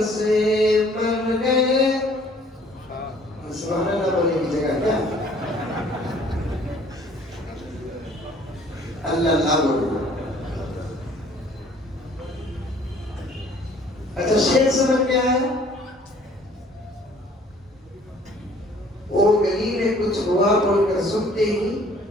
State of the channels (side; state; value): both; normal; correlation 0.56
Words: سے مر گئے. سبحان اللہ بولنے کی جگہ کیا؟ اللہ اللہ بولو. اچھا شعر سمجھ میں آیا؟ وہ گلی میں کچھ ہوا بول کر سنتے ہی